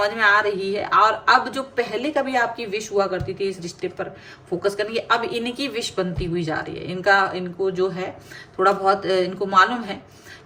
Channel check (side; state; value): both; identical; correlation 1.00